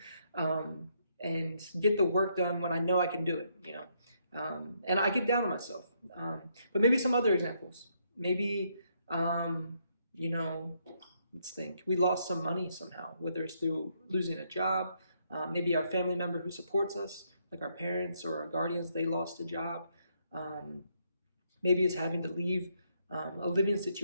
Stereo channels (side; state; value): both; inverted; correlation -0.74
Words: and get the work done when I know I can do it, and I get down on myself. But maybe some other examples, maybe, let's think, we lost some money somehow, whether it's through losing a job, maybe our family member who supports us, like our parents or our guardians, they lost a job. Maybe it's having to leave a living